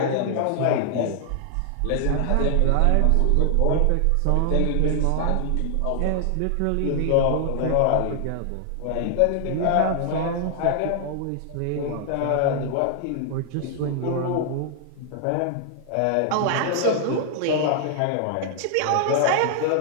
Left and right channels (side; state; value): both; different; correlation 0.00